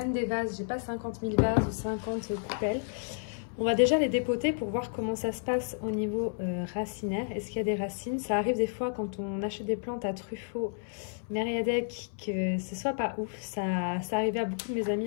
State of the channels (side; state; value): right; silent; 57 dB below the other